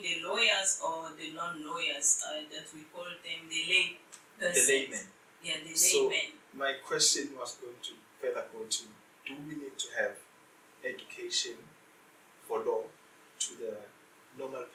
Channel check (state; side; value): identical; both; correlation 1.00